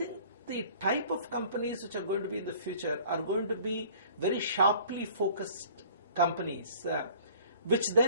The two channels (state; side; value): inverted; both; correlation -0.50